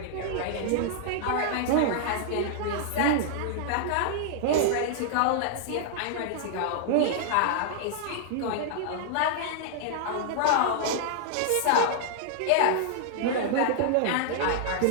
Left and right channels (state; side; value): different; both; correlation -0.01